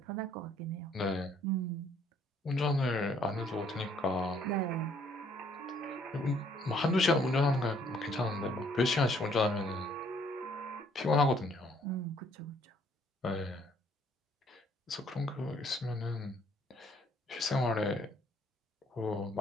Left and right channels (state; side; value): normal; both; correlation 0.64